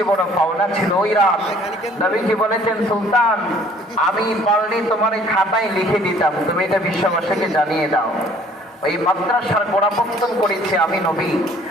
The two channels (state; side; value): normal; both; correlation 0.56